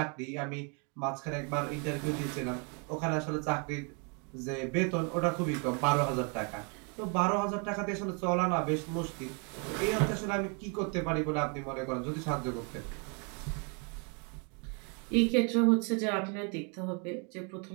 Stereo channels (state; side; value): quieter; left; 35.6 dB